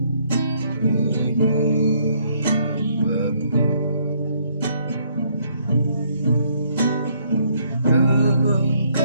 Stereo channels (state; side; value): inverted; both; correlation -0.68